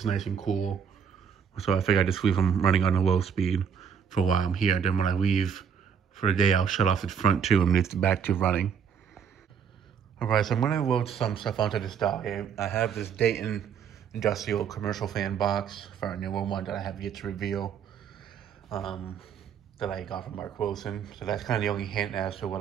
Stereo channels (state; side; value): quieter; left; 7.5 dB